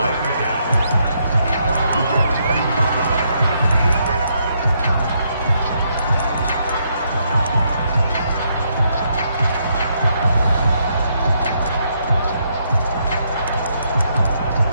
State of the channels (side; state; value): both; inverted; correlation -0.75